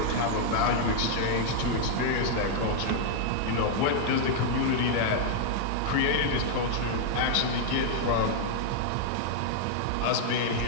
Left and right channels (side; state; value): both; different; correlation -0.01